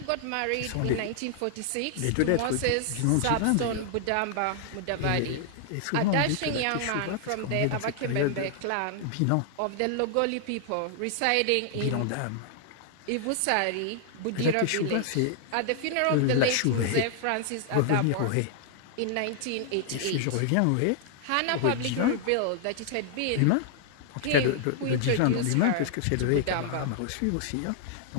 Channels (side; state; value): both; different; correlation -0.01